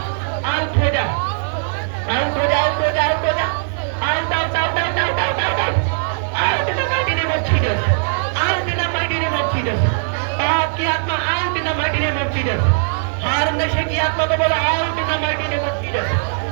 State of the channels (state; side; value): silent; left; digital silence